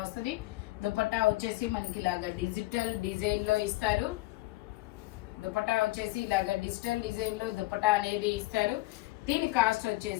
వస్తుంది. దుపట్టా వచ్చేసి మనకి ఇలాగా డిజిటల్ డిజైన్ లో ఇస్తారు. దుపట్టా వచ్చేసి ఇలాగా డిజిటల్ డిజైన్ లో దుపట్టా అనేది ఇస్తారు. దీని కాస్ట్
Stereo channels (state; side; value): quieter; right; 19.4 dB